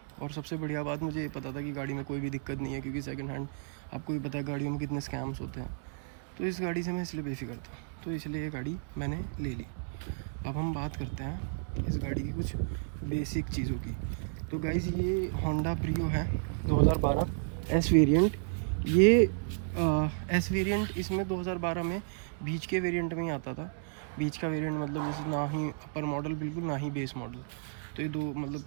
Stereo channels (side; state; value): left; silent; digital silence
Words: और सबसे बढ़िया बात मुझे ये पता था कि गाड़ी में कोई भी दिक्कत नहीं है, क्योंकि सेकंड हैंड आपको भी पता है गाड़ियों में कितने स्कैम्स होते हैं। तो इस गाड़ी से मैं इसलिए बेफिक्र था, तो इसलिए ये गाड़ी मैंने ले ली। अब हम बात करते हैं इस गाड़ी की कुछ बेसिक चीज़ों की। तो गाइज़ ये होंडा ब्रियो है 2012 एस वेरिएंट। ये एस वेरिएंट इसमें 2012 में बीच के वेरिएंट में ही आता था। बीच का वेरिएंट मतलब जैसे ना ही अपर मॉडल बिल्कुल, ना ही बेस मॉडल। तो ये दो मतलब